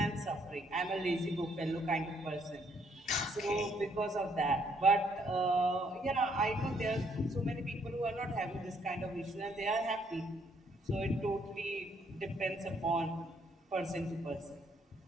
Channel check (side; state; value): both; normal; correlation 0.69